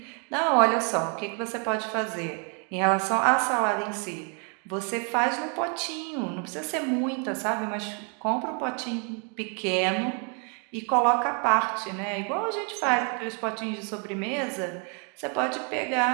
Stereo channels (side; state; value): left; quieter; 38.1 dB